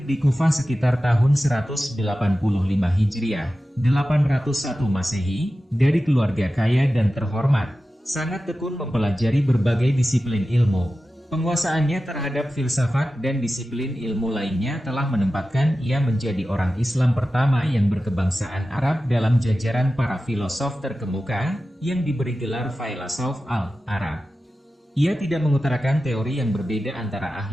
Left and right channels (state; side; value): normal; both; correlation 0.94